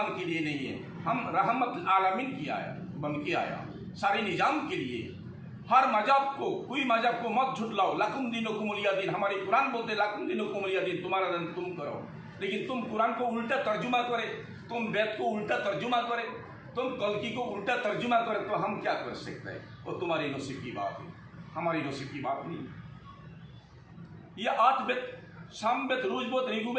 के लिए नहीं है, हम रहमतुल आलमीन बन के आया सारे निजाम के लिए। हर मजहब को, कोई मजहब को मत झुटलाओ। लाकुम दीनुकुम वलिया दीन, हमारे कुरान बोलते लाकुम दीनुकुम वलिया दीन, तुम्हारा दिन तुम करो। लेकिन तुम कुरान को उल्टा तर्जुमा करे, तुम वेद को उल्टा तर्जुमा करे, तुम कल्कि को उल्टा तर्जुमा करे, तो हम क्या कर सकते हैं? वो तुम्हारी नसीब की बात है, हमारी नसीब की बात नहीं। ये 8 वेद, सामवेद, ऋग्वेद,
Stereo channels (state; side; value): identical; both; correlation 1.00